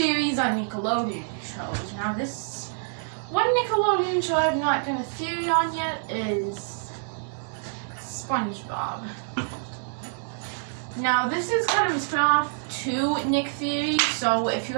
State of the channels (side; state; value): left; silent; digital silence